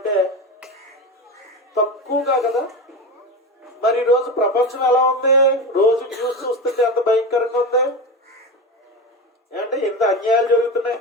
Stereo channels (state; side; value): normal; both; correlation 0.23